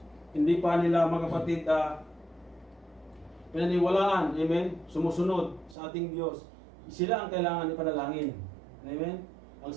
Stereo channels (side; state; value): left; drops out; at 5.8 s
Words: hindi pa nila, mga kapatid, pinaniwalaan, amen, sumusunod sa ating Diyos, sila ang kailangan ipanalangin. Amen? Ang